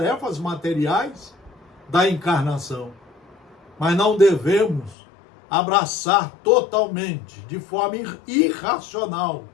materiais da encarnação, mas não devemos abraçar totalmente, de forma irracional,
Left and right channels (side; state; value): right; drops out; at 5.0 s